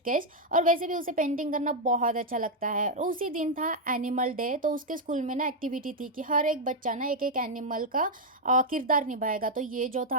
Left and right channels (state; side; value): normal; both; correlation 0.00